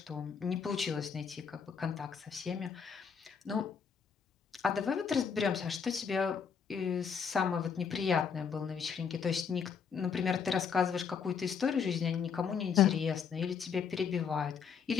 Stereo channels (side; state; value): right; quieter; 6.5 dB